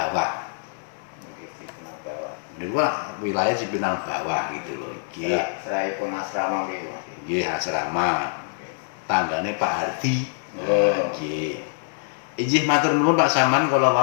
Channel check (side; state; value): right; silent; digital silence